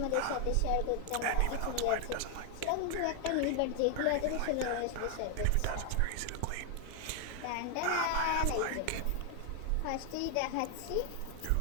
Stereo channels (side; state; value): both; different; correlation 0.00